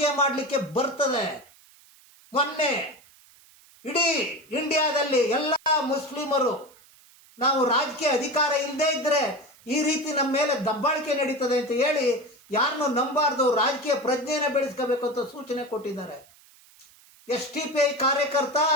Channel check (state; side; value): noise; right; hiss, 27 dB below the sound